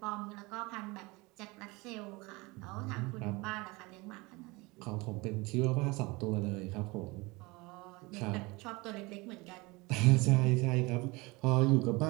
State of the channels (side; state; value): left; quieter; 24.3 dB